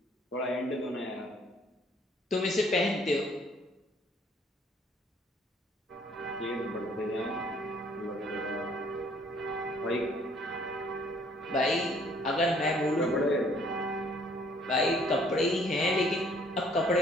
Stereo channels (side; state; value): both; normal; correlation 0.61